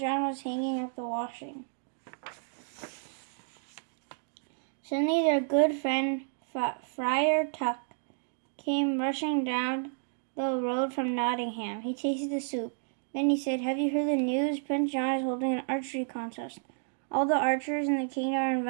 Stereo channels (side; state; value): left; silent; digital silence